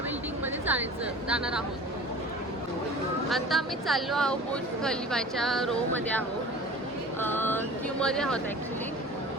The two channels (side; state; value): both; normal; correlation 0.40